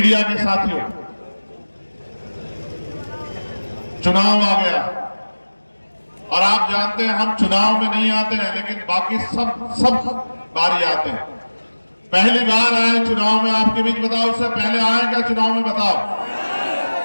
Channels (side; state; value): both; inverted; correlation -1.00